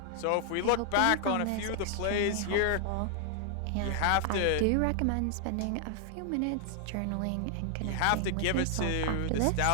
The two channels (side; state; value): both; different; correlation 0.00